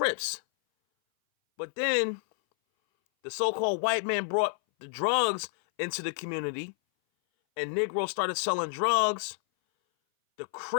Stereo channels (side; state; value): right; silent; 58 dB below the other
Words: But then the so-called white man brought the drugs into the community, and Negroes started selling drugs. The